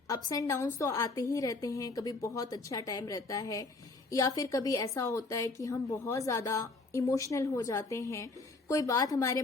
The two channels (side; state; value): right; quieter; 3.5 dB